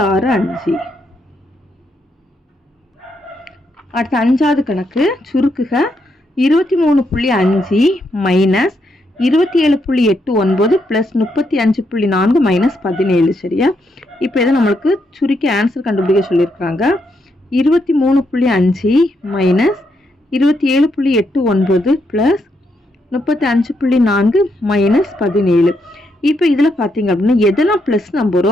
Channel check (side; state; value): both; normal; correlation 0.79